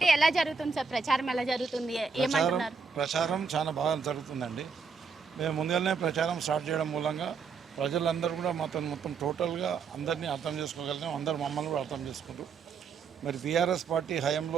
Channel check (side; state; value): left; quieter; 5.3 dB